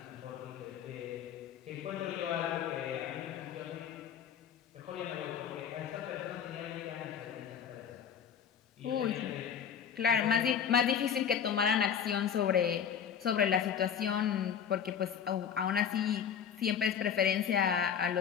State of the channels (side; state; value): right; quieter; 8.0 dB